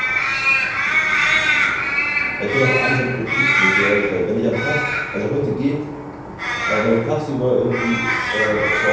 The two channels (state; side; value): identical; both; correlation 1.00